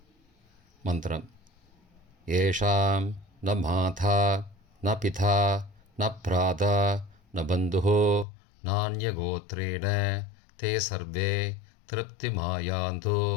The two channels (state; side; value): drops out; right; at 8.2 s